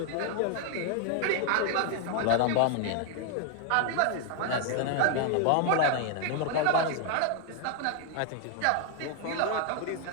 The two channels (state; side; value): different; both; correlation 0.00